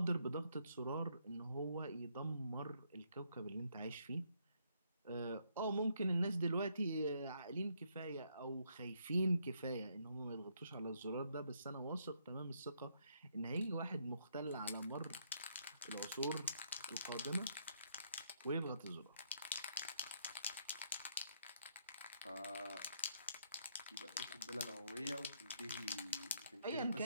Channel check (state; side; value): inverted; both; correlation -0.73